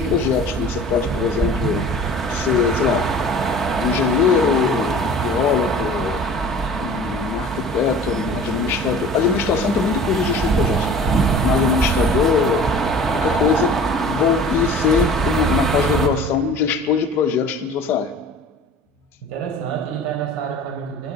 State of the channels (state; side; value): normal; both; correlation 0.43